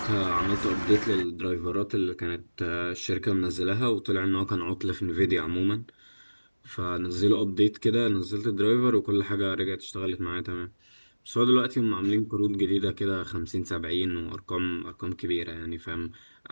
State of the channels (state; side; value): inverted; both; correlation -1.00